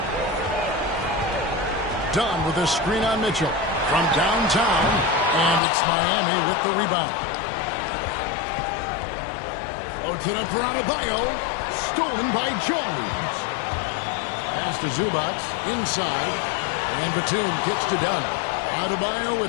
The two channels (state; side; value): drops out; right; at 5.6 s